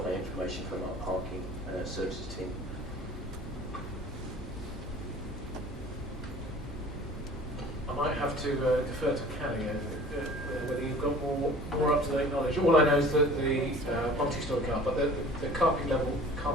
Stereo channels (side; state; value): both; normal; correlation 0.46